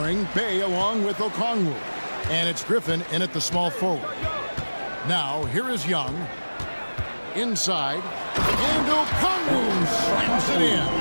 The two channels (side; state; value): both; inverted; correlation -1.00